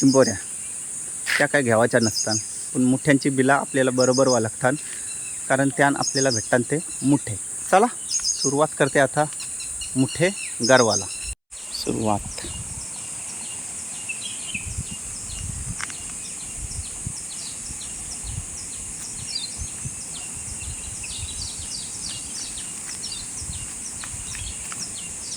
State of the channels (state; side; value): identical; both; correlation 1.00